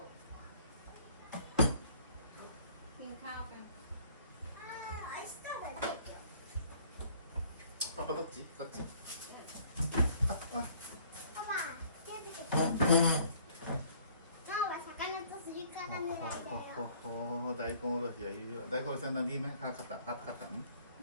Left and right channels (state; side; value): inverted; both; correlation -0.57